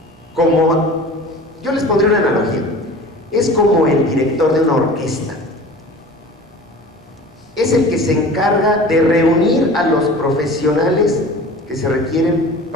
como, yo les pondré una analogía, es como el director de una orquesta. Es el que se encarga de reunir a los profesionales que se requieren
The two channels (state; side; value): normal; both; correlation 0.40